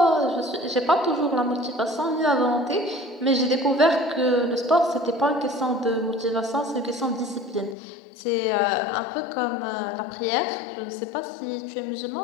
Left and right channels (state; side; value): drops out; right; at 7.8 s